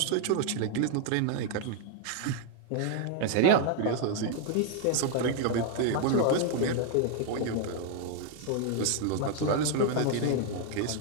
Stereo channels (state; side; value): different; both; correlation 0.00